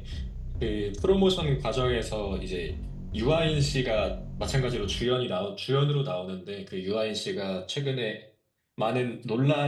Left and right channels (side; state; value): both; identical; correlation 1.00